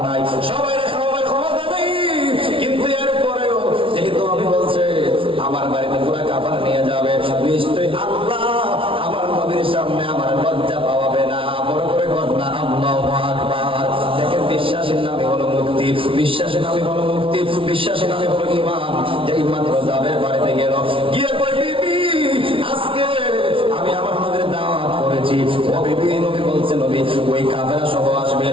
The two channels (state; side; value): late; left; 0.25 ms